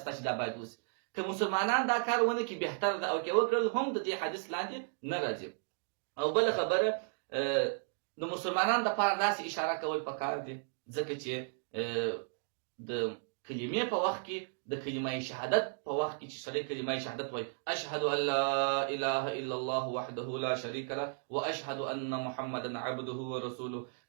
چې دا باید وسي که مسلمانان دا کار ونه کړي بهتر ده او که وکړل هم د دې حدیث لاندې نه راځي او بله خبره د مسلمانانو دپاره داسې اشاره کول پکار دي ځکه چې د کلمې په وخت کې د کلمه شهادت په وخت کې چې سړی کلمه شهادت وایي اشهد ان لا اله الا الله وحده لا شریک له واشهد ان محمدا عبده ورسوله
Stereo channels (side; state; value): left; silent; digital silence